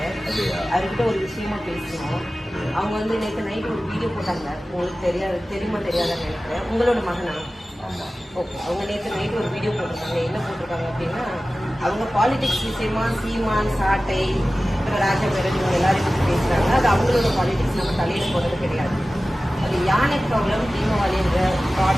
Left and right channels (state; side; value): normal; both; correlation 0.96